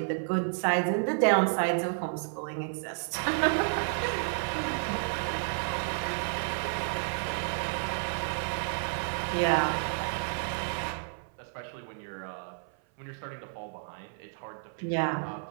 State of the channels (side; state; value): left; silent; 57 dB below the other